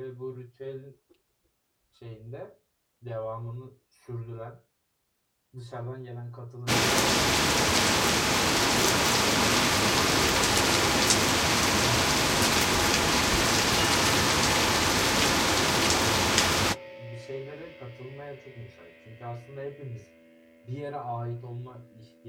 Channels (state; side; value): identical; both; correlation 1.00